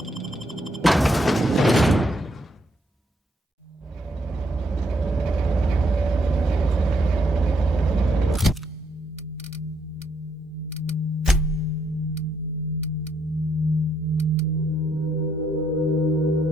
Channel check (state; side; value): normal; both; correlation 0.74